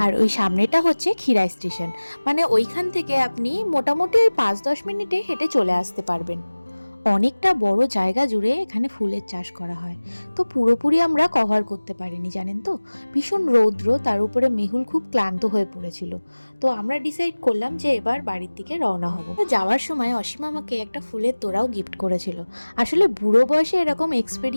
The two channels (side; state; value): both; inverted; correlation -1.00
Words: আর ওই সামনেটা হচ্ছে ক্ষীরাই স্টেশন, মানে ওইখান থেকে আপনি মোটামুটি ওই 5-10 মিনিটে হেঁটে চলে আসতে পারবেন। অনেকটা বড় জায়গা জুড়ে এখানে ফুলের চাষ করা হয়, তো পুরোপুরি আমরা কভার করতে পারিনি, জানেন তো, ভীষণ রৌদ্র, তার উপরে মেহুল খুব ক্লান্ত হয়ে পড়েছিল। তো আমরা ডিসাইড করলাম যে এবার বাড়ির দিকে রওনা হব। তো যাওয়ার সময় অসীম আমাকে একটা ফুলের তোড়াও গিফট করেছিল। আসলে বুড়ো বয়সে এরকম